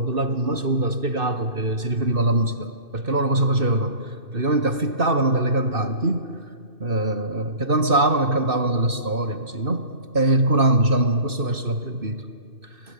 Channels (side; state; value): left; late; 2.6 ms